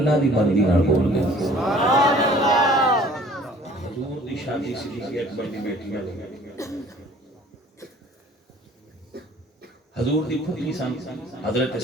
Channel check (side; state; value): both; normal; correlation 0.52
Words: دی مرضی نال بول دے. حضور دی شادی صدیق اکبر دی بیٹی نال حضور دی پھوپھی سن حضرت